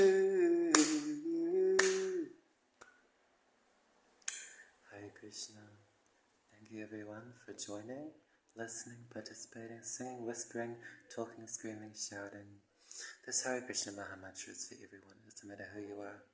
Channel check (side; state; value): both; identical; correlation 1.00